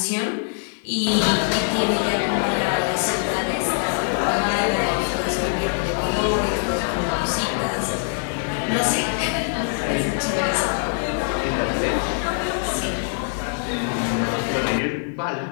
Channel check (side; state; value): right; silent; 63 dB below the other